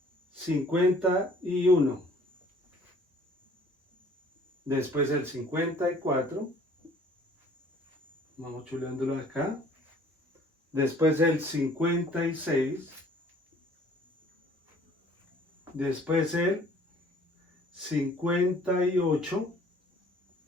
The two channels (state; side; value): normal; both; correlation 0.55